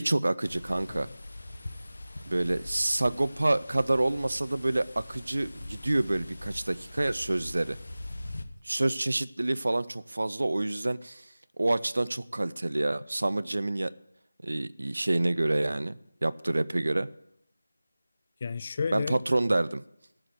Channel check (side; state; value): both; inverted; correlation -0.99